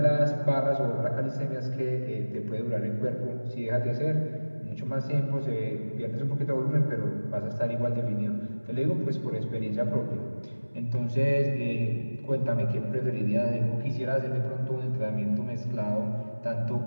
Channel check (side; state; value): both; inverted; correlation -1.00